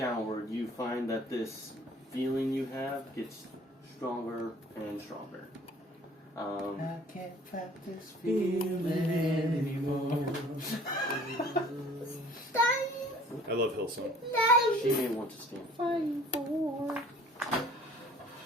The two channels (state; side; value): normal; both; correlation 0.52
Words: you find that this feeling you have gets stronger and stronger. I can't fight this feeling anymore. I love Hillsong. She may want to stand.